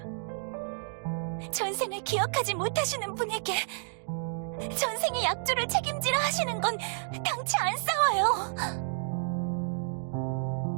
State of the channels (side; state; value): left; silent; digital silence